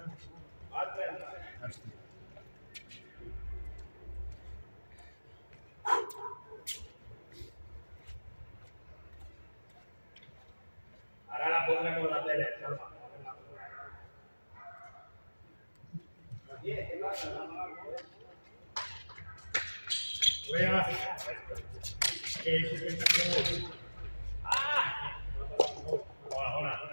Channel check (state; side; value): inverted; both; correlation -1.00